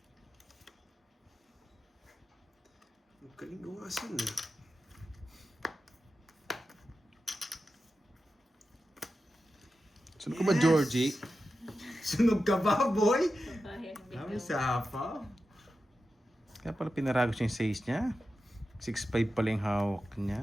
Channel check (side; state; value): both; normal; correlation 0.91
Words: Ang galing gawasan eh. Sunod ko ba, Georgie? Sunog ka ba, boy? Babae ang Kami biglaw. sa hapa. Kaya pala pinaragos yung 6 niya. 6'5 pala yung hawak niya.